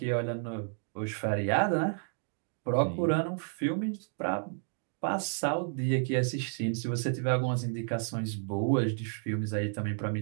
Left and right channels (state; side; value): silent; left; 57 dB below the other